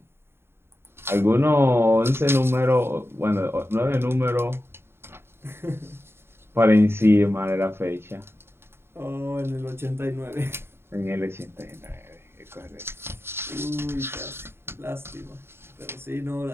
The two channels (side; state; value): left; late; 0.11 ms